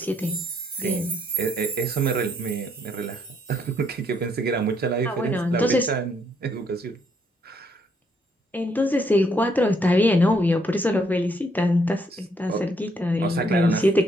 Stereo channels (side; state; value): both; normal; correlation 0.71